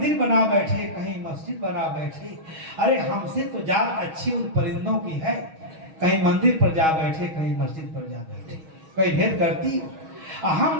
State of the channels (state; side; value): late; left; 6.3 ms